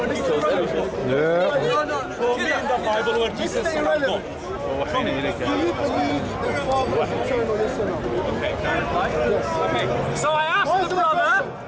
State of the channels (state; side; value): identical; both; correlation 1.00